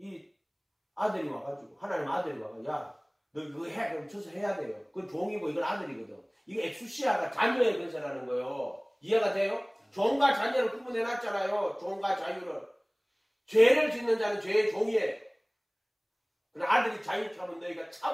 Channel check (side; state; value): both; identical; correlation 1.00